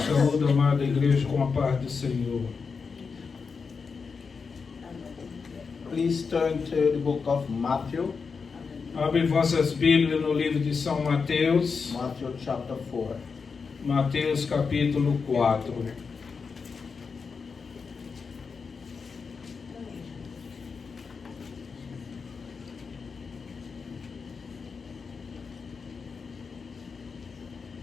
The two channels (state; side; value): quieter; right; 5.2 dB